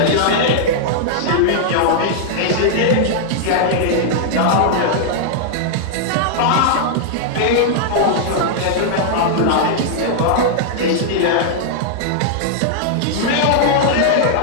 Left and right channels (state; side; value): different; both; correlation -0.01